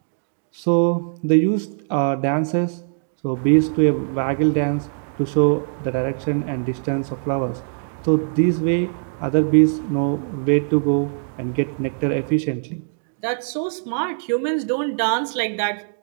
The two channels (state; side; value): silent; left; digital silence